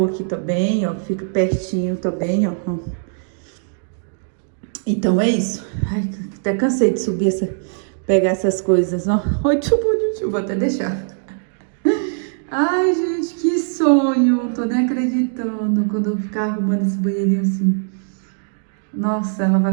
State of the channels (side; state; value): left; silent; digital silence